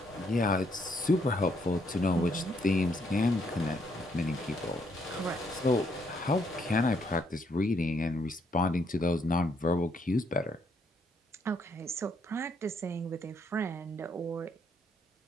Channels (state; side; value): normal; both; correlation 0.72